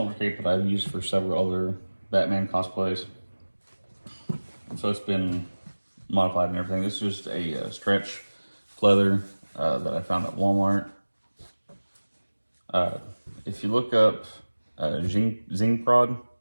cape that I've used for several other Batman cosplays, so it's been modified and everything. This is just a stretch pleather that I found at Walmart. If you look up Zing Prod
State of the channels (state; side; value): inverted; both; correlation -1.00